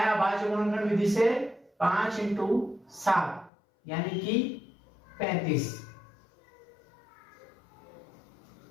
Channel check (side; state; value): right; drops out; at 3.5 s